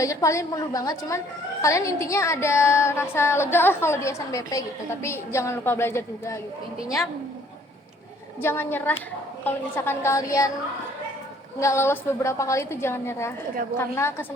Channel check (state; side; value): normal; both; correlation 0.60